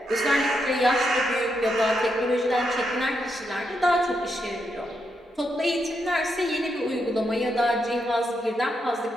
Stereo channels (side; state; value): both; normal; correlation 0.82